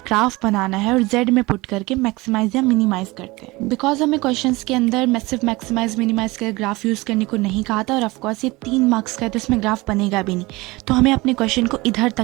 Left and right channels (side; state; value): left; quieter; 22.1 dB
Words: ग्राफ बनाना है और z में पुट करके मैक्सिमाइज या मिनिमाइज करते हैं। बिकॉज हमें क्वेश्चंस के अंदर सिर्फ मैक्सिमाइज मिनिमाइज कर ग्राफ यूज़ करने को नहीं कहा था, और ऑफकोर्स ये 3 मार्क्स का है तो इसमें ग्राफ बनेगा भी नहीं। तो हमें अपने क्वेश्चन को इधर